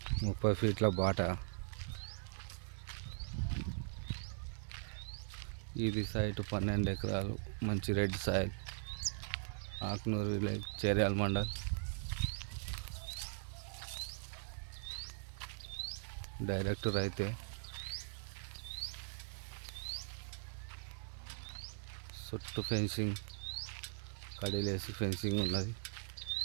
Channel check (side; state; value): left; silent; digital silence